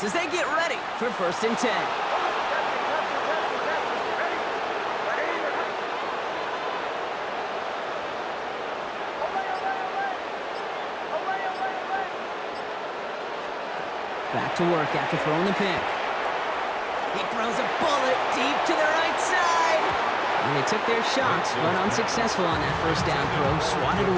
as they get ready for 1st and 10. Back to work after throwing the pick. He throws a bullet deep to the right side. And they took their shots, but unsuccessful on that 1st down throw, swatted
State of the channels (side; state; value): both; identical; correlation 1.00